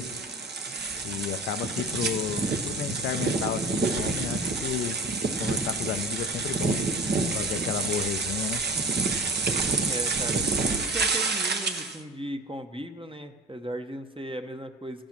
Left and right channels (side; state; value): both; normal; correlation 0.36